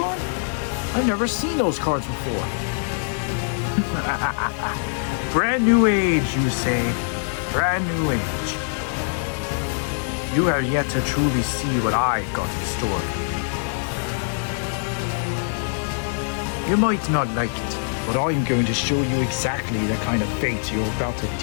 I've never seen those cards before. Brand new age, you say. Brand new age. You have yet to truly see what I've got in store for you. You might not like it, but I'm going to show you exactly the kind of fate you're about to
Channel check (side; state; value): right; silent; digital silence